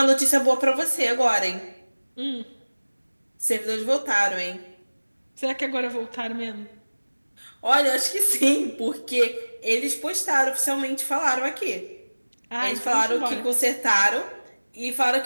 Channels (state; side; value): inverted; both; correlation -1.00